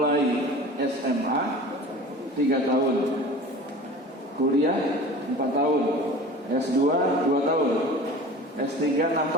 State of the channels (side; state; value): both; normal; correlation 0.39